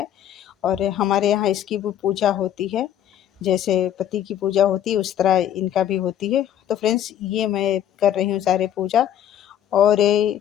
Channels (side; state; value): right; quieter; 10.6 dB